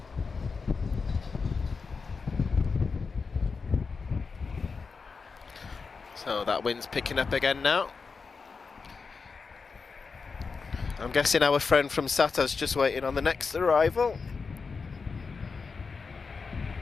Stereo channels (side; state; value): right; quieter; 4.9 dB